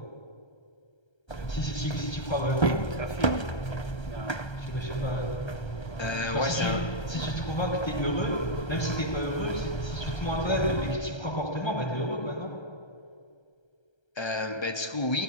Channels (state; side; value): late; right; 1.3 ms